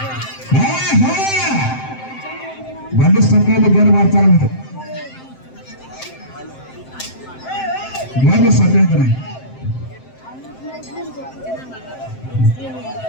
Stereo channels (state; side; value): late; right; 7.7 ms